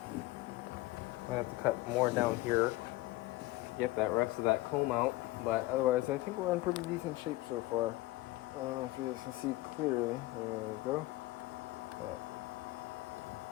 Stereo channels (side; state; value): right; quieter; 18.4 dB